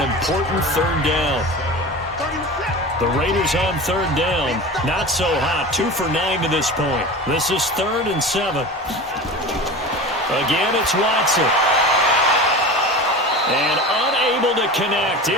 3rd down. The Raiders on 3rd down, not so hot, 2 for 9 to this point. This is 3rd and 7. Again, it's Watson. And unable to connect,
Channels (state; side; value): normal; both; correlation 0.32